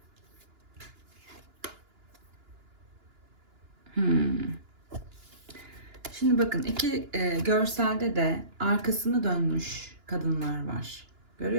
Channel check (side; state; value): left; late; 2.9 ms